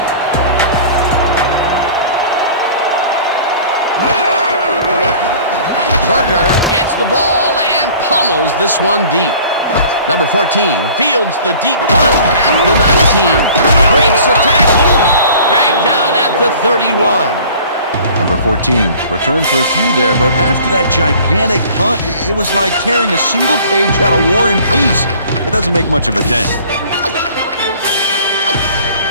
Berger gets the ball and pummels this one deep. Number 14 fields the deep punt at the 19. Breaks a tackle. Dragged down at the 31. Number 14 returned for a few there, but after that gigantic punt, it was like tearing a single page out of War and Peace. It doesn't make much of a dent.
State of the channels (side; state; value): both; inverted; correlation -0.47